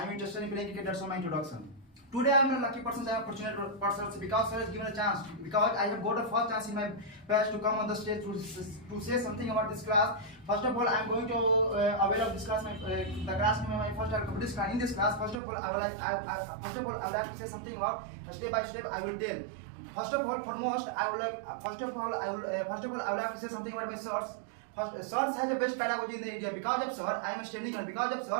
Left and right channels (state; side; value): drops out; left; at 15.4 s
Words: am interested in playing cricket. That's all my introduction. Today I am a lucky person, I am fortunate person because sir has given a chance. Because I have got a first chance in my past to come on the stage to say something about this class. First of all, I am going to avail of this class, the class my first competition class. In this class, first of all, I would like to say something about step by step. I will tell. First of all, I would like to say something about my source. First, Sir has the best pedagogy in the area. Because of Sir, I am standing here in